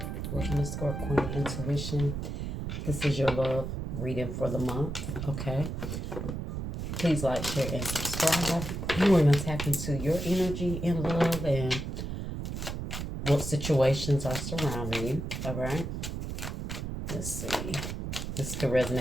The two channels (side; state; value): right; noise; rumble, 5 dB below the sound